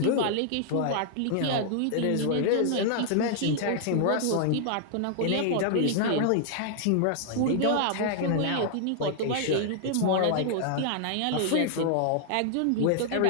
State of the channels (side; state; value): both; different; correlation -0.01